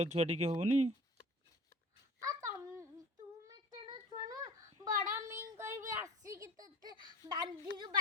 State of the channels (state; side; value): normal; both; correlation 0.41